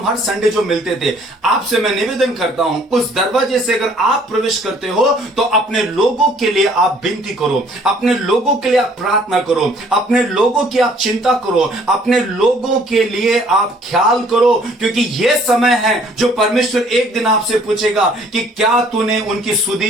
हर संडे जो मिलते थे, आपसे मैं निवेदन करता हूं उस दरवाजे से अगर आप प्रवेश करते हो तो अपने लोगों के लिए आप विनती करो, अपने लोगों के लिए आप प्रार्थना करो, अपने लोगों की आप चिंता करो, अपने लोगों के लिए आप ख्याल करो, क्योंकि यह समय है जो परमेश्वर एक दिन आपसे पूछेगा कि क्या तूने उनकी सुधि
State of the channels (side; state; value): both; normal; correlation 0.59